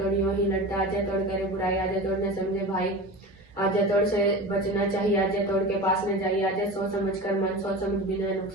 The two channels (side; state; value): both; normal; correlation 0.30